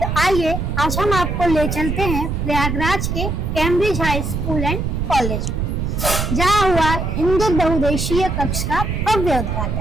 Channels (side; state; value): right; noise; rumble, 1 dB below the sound